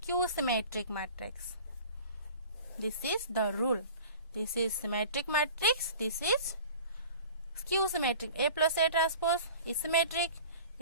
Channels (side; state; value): both; inverted; correlation -0.42